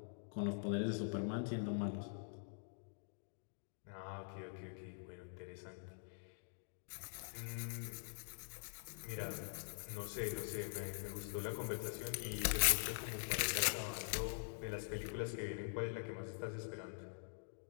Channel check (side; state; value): right; silent; digital silence